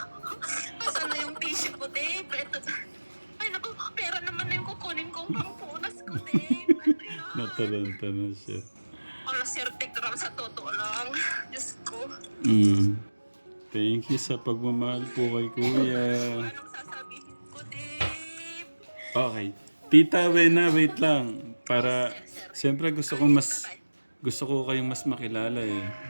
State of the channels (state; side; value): inverted; both; correlation -1.00